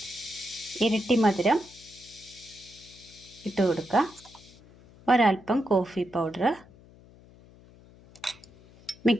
ഇരട്ടി മധുരം ഇട്ട് കൊടുക്കുക. ഒരൽപ്പം കോഫി പൗഡർ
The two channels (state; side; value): noise; left; hum, 24 dB below the sound